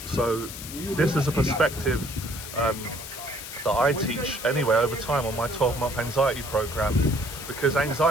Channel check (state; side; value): noise; left; hiss, 10 dB below the sound